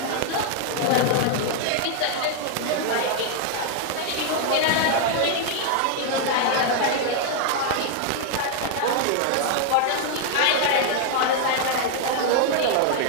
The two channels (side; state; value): both; different; correlation 0.00